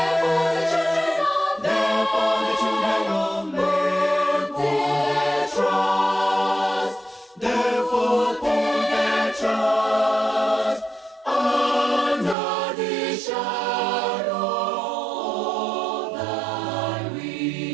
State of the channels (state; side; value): drops out; left; at 12.4 s